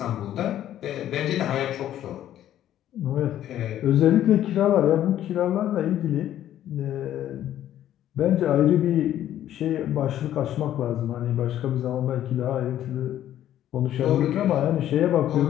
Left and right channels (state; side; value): quieter; right; 11.9 dB